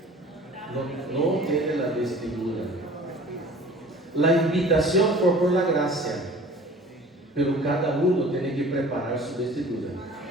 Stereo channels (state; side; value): normal; both; correlation 0.45